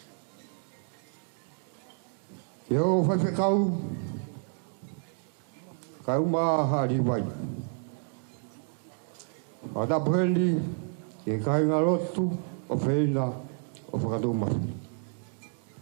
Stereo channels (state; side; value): silent; left; 58 dB below the other